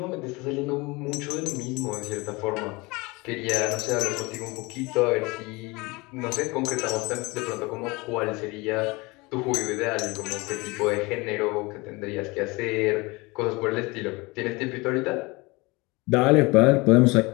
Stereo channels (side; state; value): right; quieter; 24.5 dB